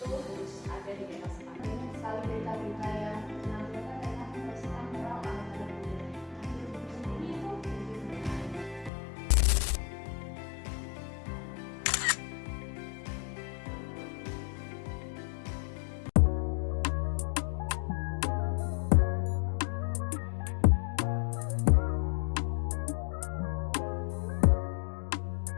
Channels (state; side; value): drops out; right; at 8.9 s